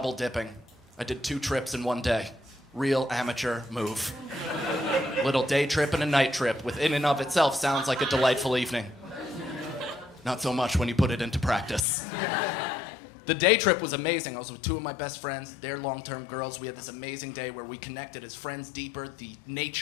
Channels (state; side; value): drops out; right; at 11.9 s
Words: dipping. I did 2 trips in one day. Real amateur move. Little day trip and a night trip, which in and of itself sounds like a delightful evening. Not so much when you put it into practice. The day trip was amazing. I was with 2 of my best friends. They're long-term girls. We had this amazing day where we connected as friends deeper. The